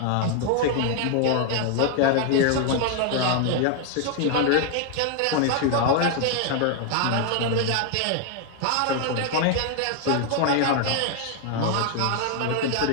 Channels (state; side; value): different; both; correlation 0.00